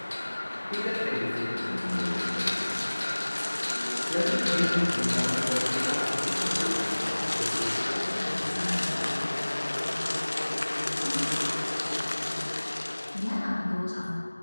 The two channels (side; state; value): both; inverted; correlation -1.00